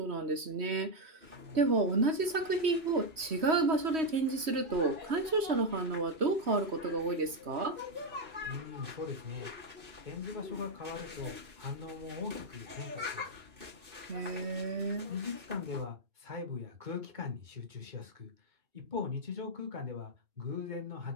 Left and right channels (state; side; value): late; left; 3.1 ms